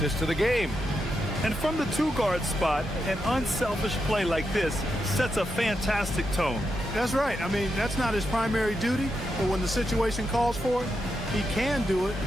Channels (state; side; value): normal; both; correlation 0.85